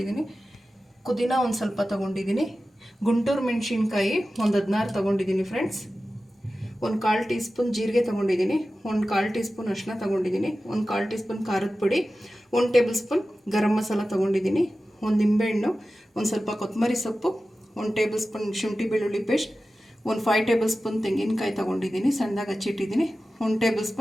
ಪುದೀನ ಒಂದು ಸ್ವಲ್ಪ ತಗೊಂಡಿದ್ದೀನಿ. ಗುಂಟೂರು ಮೆಣಸಿನ್ಕಾಯಿ ಒಂದು 16 ತಗೊಂಡಿದ್ದೀನಿ ಫ್ರೆಂಡ್ಸ್. ಒಂದು 1/4 ಟೀ ಸ್ಪೂನ್ ಜೀರಿಗೆ ತೊಗೊಂಡಿದ್ದೀನಿ. ಒಂದು 1/4 ಟೀ ಸ್ಪೂನ್ ಅರಿಶಿನ ತೊಗೊಂಡಿದ್ದೀನಿ. ಒಂದು 1/4 ಟೀ ಸ್ಪೂನ್ ಖಾರದ ಪುಡಿ. 1 ಟೇಬಲ್ ಸ್ಪೂನ್ ಗರಂ ಮಸಾಲ ತೊಗೊಂಡಿದ್ದೀನಿ. ಒಂದು ನಿಂಬೆಹಣ್ಣು, ಒಂದು ಸ್ವಲ್ಪ ಕೊತ್ತಂಬರಿ ಸೊಪ್ಪು, 1 ಟೇಬಲ್ ಸ್ಪೂನ್ ಶುಂಠಿ ಬೆಳ್ಳುಳ್ಳಿ ಪೇಸ್ಟ್, ಒಂದು 5 ಟೇಬಲ್ ಸ್ಪೂನ್ ತೆಂಗಿನಕಾಯಿ ತೊಗೊಂಡಿದ್ದೀನಿ, ಸಣ್ಣದಾಗಿ ಹಚ್ಚಿಟ್ಟಿದ್ದೀನಿ. 1 ಟೇಬಲ್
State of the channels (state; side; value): normal; both; correlation 0.94